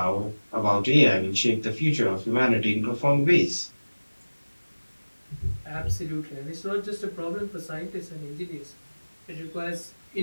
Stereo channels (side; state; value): both; inverted; correlation -1.00